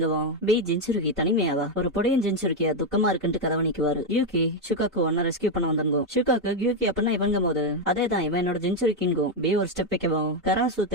பி ஜின்சுர்கி தனிமையாவா ஒரு பொடியன் ஜின்சுர்கியா துக்கமா இருக்குன்ட்டு கதவை நிக்குவாரு. யூகி ஷுகாக்கு ஒன்ன ரெஸ்கியூ பண்ண வந்திருந்தோம். ஷுகாக்கு யூகி அப்படின்னா இவங்க போது அதேதான் இவன் என்னோட ஜின்சுரிக்கின்கும். பி ஒரு ஸ்டெப் வைக்கவும் கராசு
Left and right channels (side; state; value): both; normal; correlation 0.04